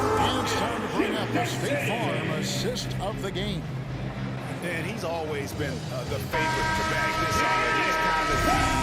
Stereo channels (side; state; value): both; identical; correlation 1.00